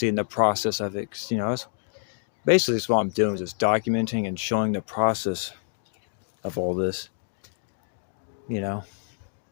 the process of it. You know, that's basically what I'm doing, is just documenting and showing the process of all this, you know.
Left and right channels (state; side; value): silent; right; digital silence